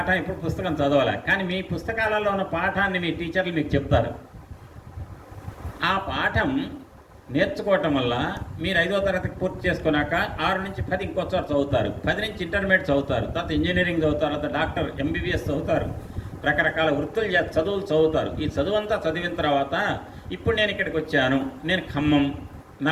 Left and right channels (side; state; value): both; identical; correlation 1.00